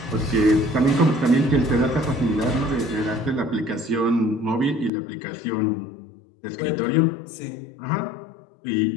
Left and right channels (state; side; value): drops out; right; at 4.9 s